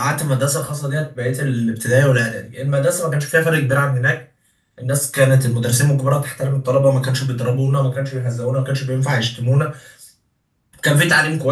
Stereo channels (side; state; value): both; identical; correlation 1.00